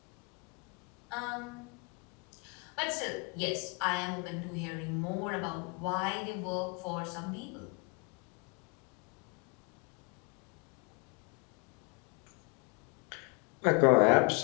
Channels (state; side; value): quieter; right; 31.7 dB